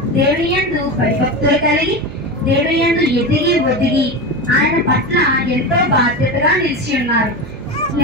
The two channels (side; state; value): right; noise; hum, 15 dB below the sound